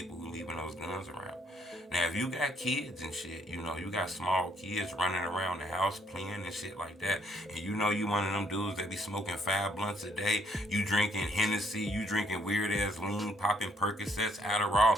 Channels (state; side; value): normal; both; correlation 0.68